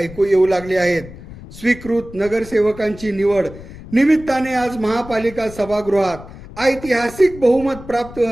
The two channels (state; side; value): noise; left; rumble, 16 dB below the sound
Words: येऊ लागले आहेत. स्वीकृत नगरसेवकांची निवड निमित्ताने आज महापालिका सभागृहात ऐतिहासिक बहुमत प्राप्त